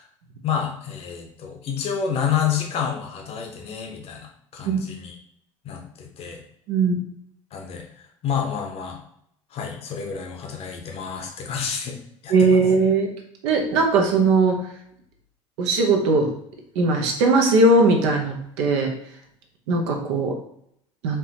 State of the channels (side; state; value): both; normal; correlation 0.33